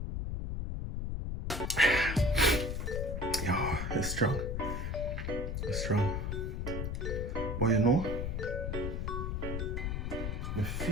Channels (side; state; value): left; noise; rumble, 2 dB below the sound